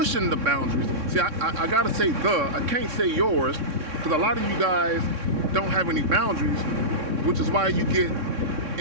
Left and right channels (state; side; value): late; left; 3.6 ms